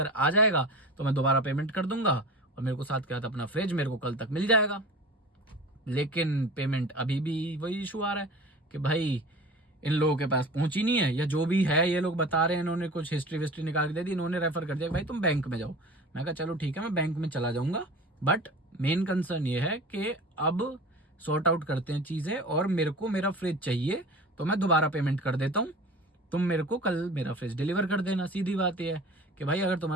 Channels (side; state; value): both; normal; correlation 0.37